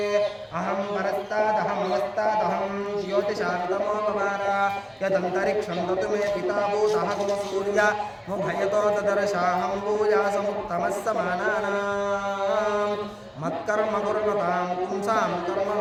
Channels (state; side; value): identical; both; correlation 1.00